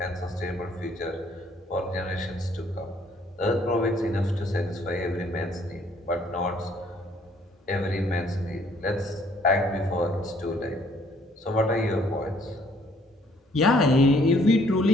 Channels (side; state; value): both; normal; correlation 0.63